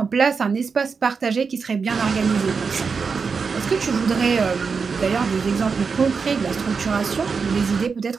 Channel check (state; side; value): quieter; left; 5.3 dB